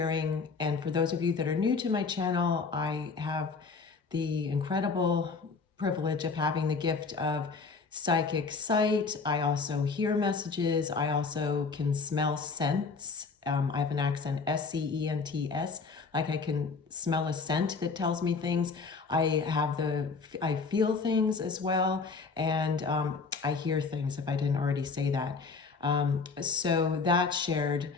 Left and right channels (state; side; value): quieter; right; 4.6 dB